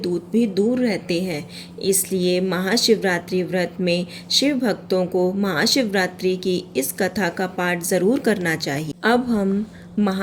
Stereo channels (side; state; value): both; identical; correlation 1.00